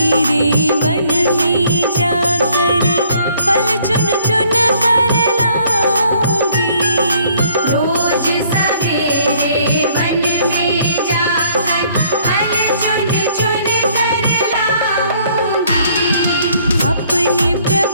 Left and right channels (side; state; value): both; inverted; correlation -0.62